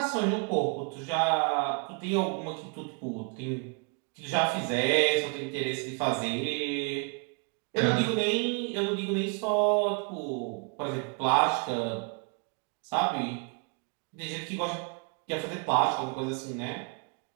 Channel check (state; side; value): quieter; left; 35.8 dB